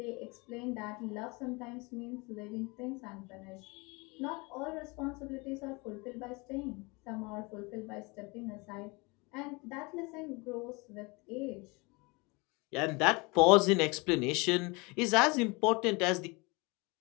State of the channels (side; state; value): right; quieter; 27.1 dB